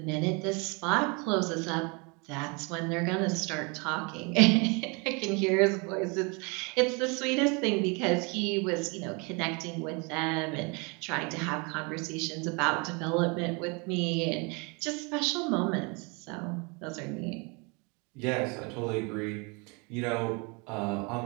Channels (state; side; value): quieter; left; 30.8 dB